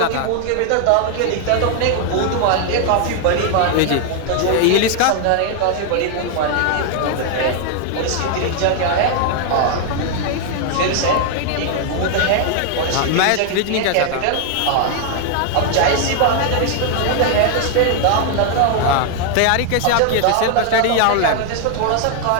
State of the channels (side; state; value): both; different; correlation 0.00